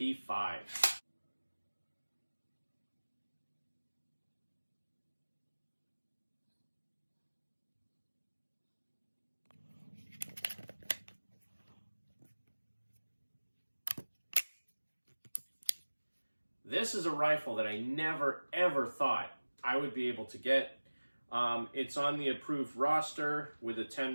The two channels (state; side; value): inverted; both; correlation -1.00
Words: This is a rifle that I never ever thought I would be able to get. It's on the approved roster with a